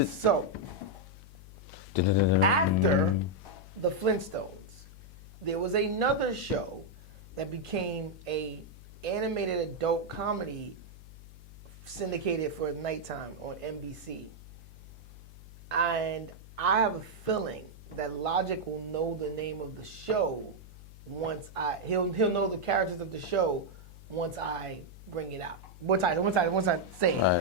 So, after the Flintstones, there was another show that became a animated adult comedy syndicated for nighttime on NBC. And I have a feeling that Logic will know the name of the show once he'll know the characters of the show once I bring it out. Once I say it. All right,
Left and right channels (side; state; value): left; noise; hum, 18 dB below the sound